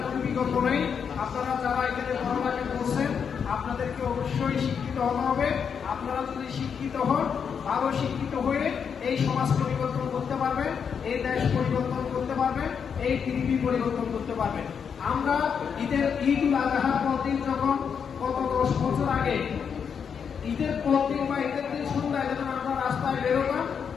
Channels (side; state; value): right; quieter; 6.9 dB